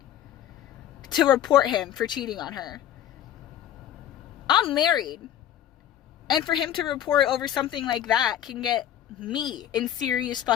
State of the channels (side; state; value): right; quieter; 11.1 dB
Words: to report him for cheating on her. I'm married, and for him to report over something like that can get me in serious